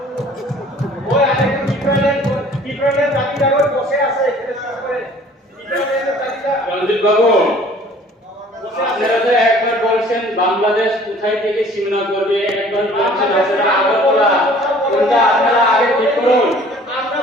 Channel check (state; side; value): normal; both; correlation 0.52